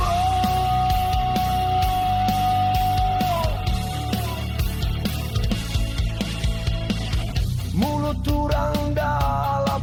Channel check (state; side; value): identical; both; correlation 1.00